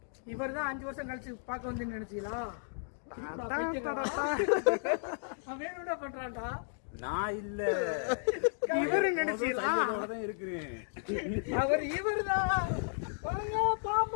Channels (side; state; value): right; silent; digital silence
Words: இவர் தான் 5 வருஷம் கழிச்சு பார்க்க வந்து நினைச்சீங்களா? வேணும்னா பண்றான்டா. நான் இல்ல, இவரு நினைச்சீங்களா? இருக்கிறேன். அவர் இவர் தான். வாங்க